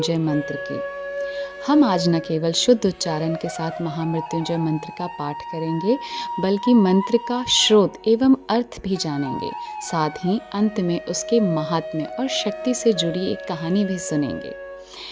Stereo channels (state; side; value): identical; both; correlation 1.00